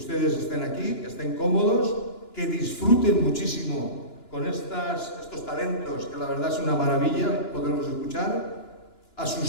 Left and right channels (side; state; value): right; late; 2.9 ms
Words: estén aquí, que estén cómodos, que disfruten muchísimo con estos talentos, que la verdad es una maravilla poderlos escuchar, a